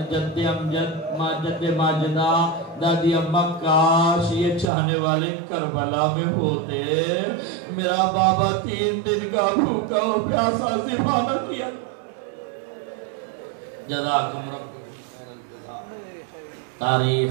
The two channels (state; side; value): drops out; left; at 4.7 s